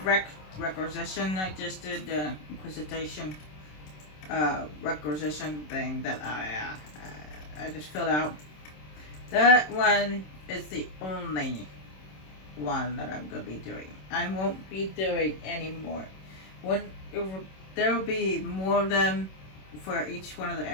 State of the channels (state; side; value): late; right; 27 ms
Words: requisition I just did, the Inquisition requisition thing that I just filled out. That one is the only one that I'm gonna be doing. I won't be doing any more. When there will be more of them for each one of the